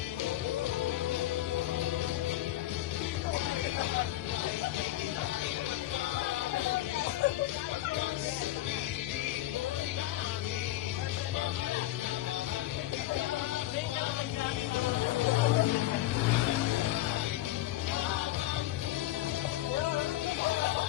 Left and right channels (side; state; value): right; quieter; 15.4 dB